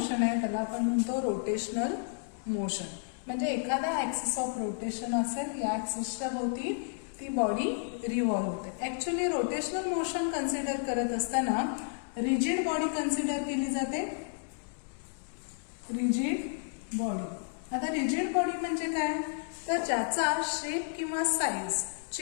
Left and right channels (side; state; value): right; silent; digital silence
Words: आहे त्याला आपण म्हणतो रोटेशनल मोशन. म्हणजे एखादा ऍक्सिस ऑफ रोटेशन असेल, या ऍक्सिसच्या भोवती ती बॉडी रिव्हॉल्व होते. ऍक्च्युअली रोटेशनल मोशन कन्सिडर करत असताना रिजिड बॉडी कन्सिडर केली जाते, रिजिड बॉडी. आता रिजिड बॉडी म्हणजे काय, तर ज्याचा शेप किंवा साईज